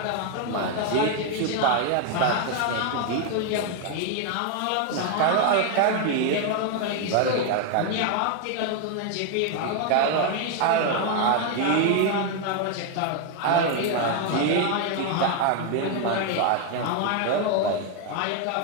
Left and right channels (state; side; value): different; both; correlation 0.01